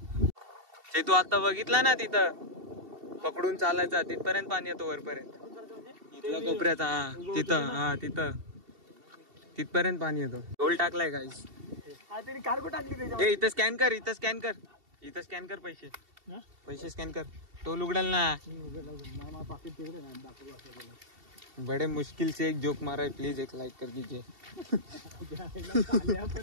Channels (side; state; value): left; late; 2.7 ms